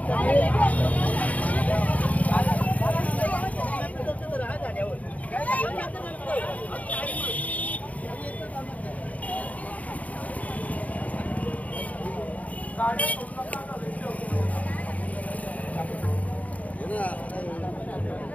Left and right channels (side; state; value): right; late; 0.071 ms